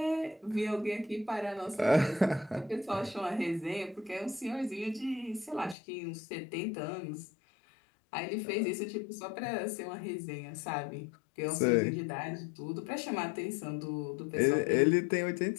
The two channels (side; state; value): right; drops out; at 5.8 s